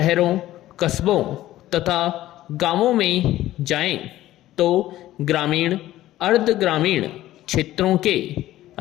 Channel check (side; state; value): right; quieter; 14.7 dB